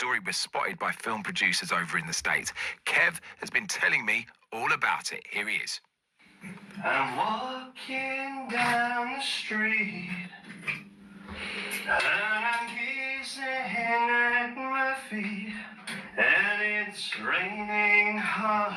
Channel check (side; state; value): both; identical; correlation 1.00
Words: was spotted by film producers over in the States. Kev has been telling me all about it. Here he is. I'm walking down the street and I'm gazing at my feet, and it's raining